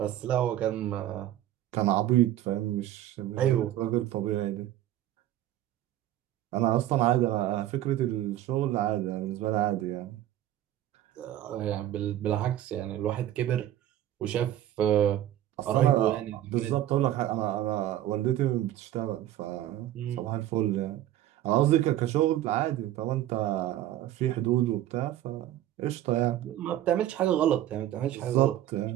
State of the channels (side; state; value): left; quieter; 12.9 dB